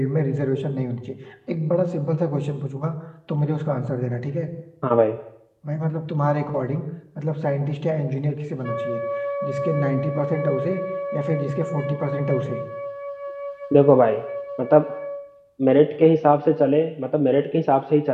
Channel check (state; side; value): identical; both; correlation 1.00